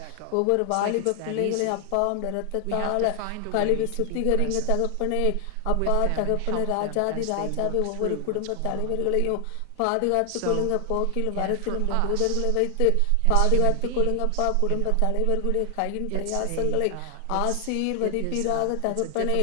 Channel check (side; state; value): both; different; correlation 0.00